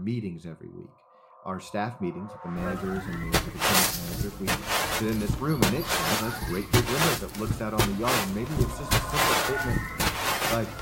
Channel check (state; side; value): identical; both; correlation 1.00